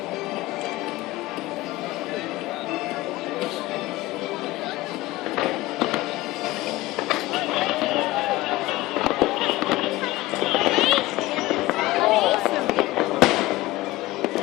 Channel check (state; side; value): quieter; right; 18.5 dB